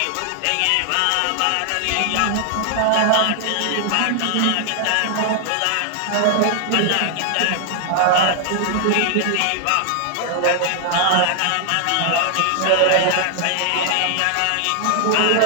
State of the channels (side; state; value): both; different; correlation 0.00